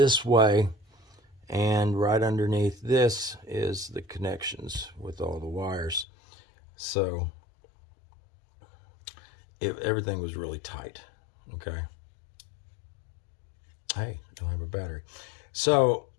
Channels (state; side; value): drops out; right; at 6.1 s